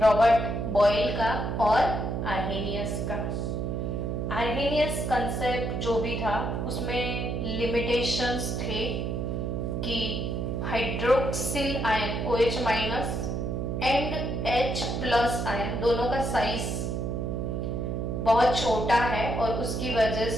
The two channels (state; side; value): noise; right; hum, 1 dB below the sound